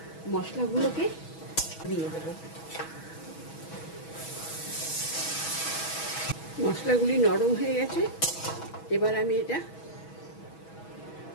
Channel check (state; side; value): late; right; 6.2 ms